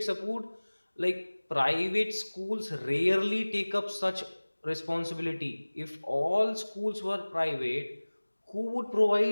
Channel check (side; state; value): both; inverted; correlation -1.00